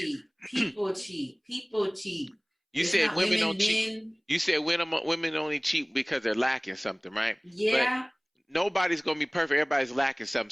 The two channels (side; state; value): both; identical; correlation 1.00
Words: People cheat. People cheat. You It's said not women women, don't cheat. men. You said women only cheat because they're lacking something, right? But Yeah. nobody's gonna be perfect. Everybody's lacking something.